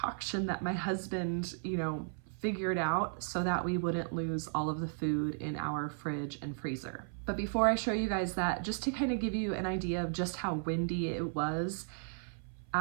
that my husband, figured out so that we wouldn't lose all of the food in our fridge and freezer. But before I show you guys that, just to kind of give you an idea of just how windy it was,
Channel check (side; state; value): left; silent; 54 dB below the other